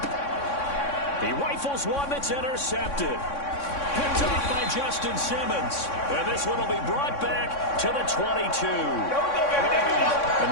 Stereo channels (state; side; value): late; right; 3.6 ms